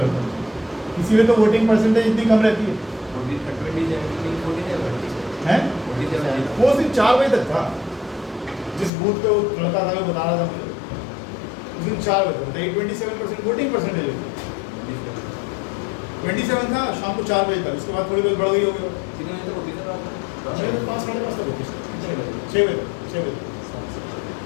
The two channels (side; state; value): right; drops out; at 8.9 s